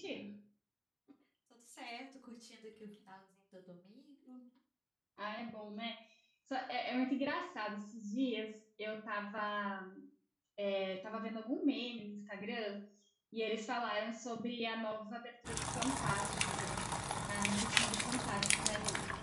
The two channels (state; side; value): identical; both; correlation 1.00